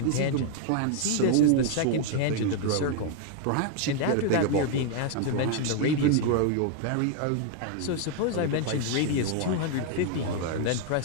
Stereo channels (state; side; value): different; both; correlation 0.00